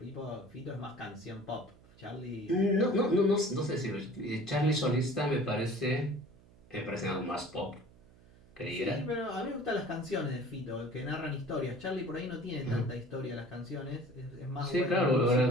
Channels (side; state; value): right; noise; hum, 25 dB below the sound